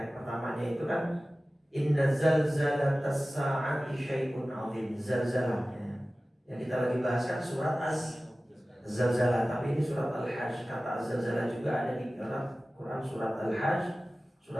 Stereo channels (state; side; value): normal; both; correlation 0.96